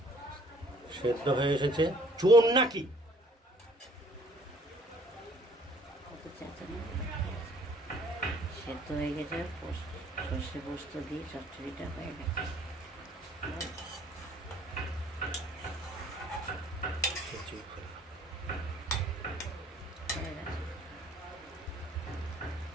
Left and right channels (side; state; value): both; normal; correlation 0.58